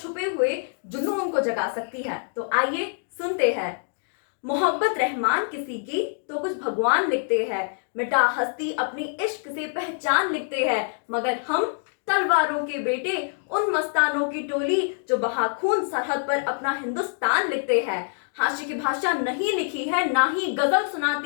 हुए जुनून को जगा सकती है। तो आइए सुनते हैं। मोहब्बत रहमान किसी की तो कुछ भगवान लिखते हैं, मिटा हस्ती अपनी इश्क से पहचान लिखते हैं, मगर हम तलवारों के बेटे उन मस्तानों की टोली जो बहा खून सरहद पर अपना हिंदुस्तान लिखते हैं। हाशिए की भाषा नहीं लिखी है, ना ही गजल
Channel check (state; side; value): silent; right; 62 dB below the other